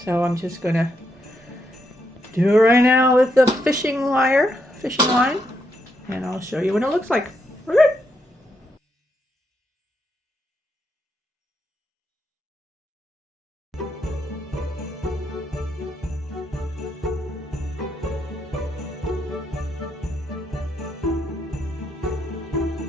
So I'm just gonna do it right now with the fishing line, and I'll show you what it looks like. Okay.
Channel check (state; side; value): normal; both; correlation 0.79